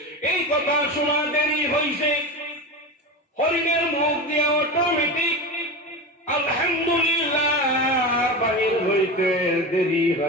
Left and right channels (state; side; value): normal; both; correlation 0.25